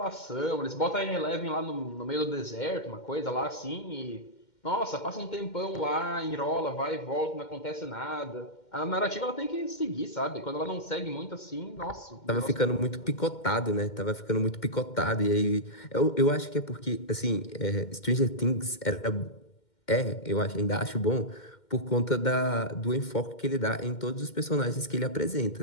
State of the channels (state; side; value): late; right; 2.1 ms